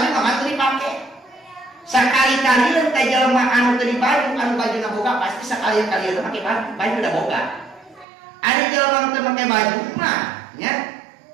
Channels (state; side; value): drops out; left; at 8.1 s